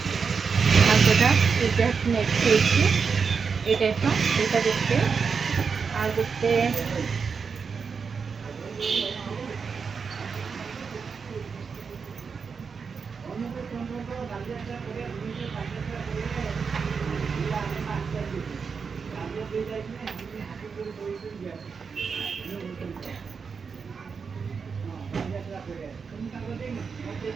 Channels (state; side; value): quieter; left; 5.6 dB